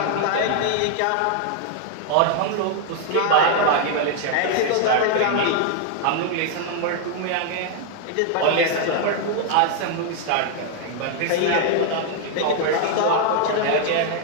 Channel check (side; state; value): both; different; correlation 0.00